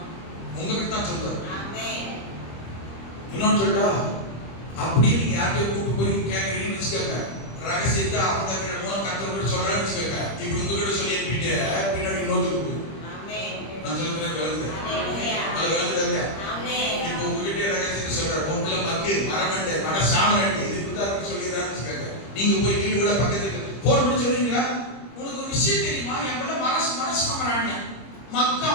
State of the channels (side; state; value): right; late; 25 ms